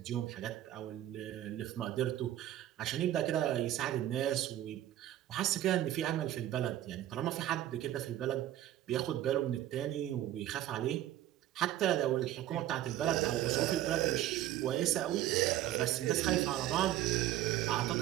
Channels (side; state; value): left; quieter; 13.2 dB